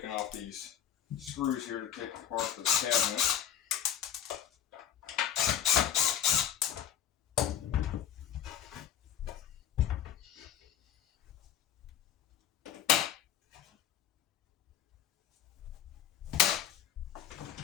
off these screws here to take apart this cabinet.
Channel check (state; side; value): quieter; right; 9.8 dB